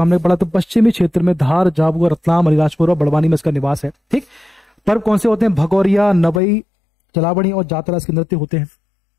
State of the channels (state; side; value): drops out; right; at 6.4 s